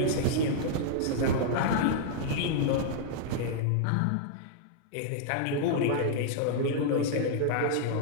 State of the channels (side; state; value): both; different; correlation -0.01